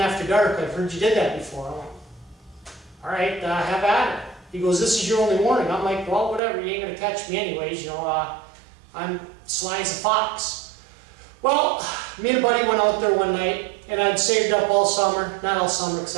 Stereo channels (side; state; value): left; drops out; at 6.4 s